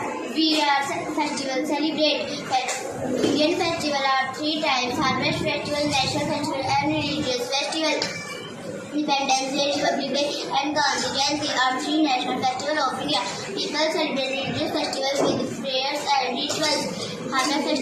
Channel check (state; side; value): identical; both; correlation 1.00